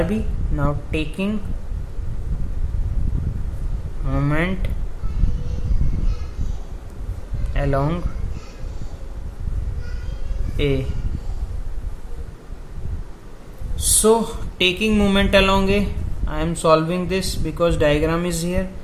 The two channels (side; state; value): both; identical; correlation 1.00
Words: Now taking moment along A. So taking moment along A, I am solving this because diagram is here.